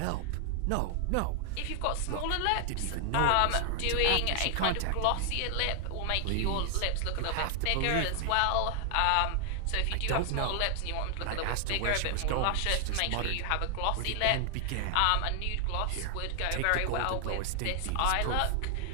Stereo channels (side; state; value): both; different; correlation 0.00